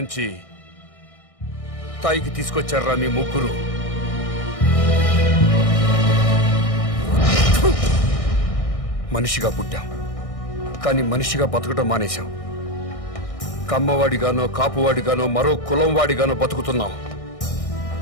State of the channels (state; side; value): late; right; 1.6 ms